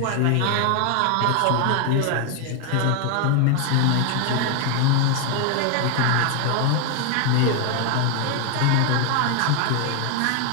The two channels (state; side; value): different; both; correlation 0.01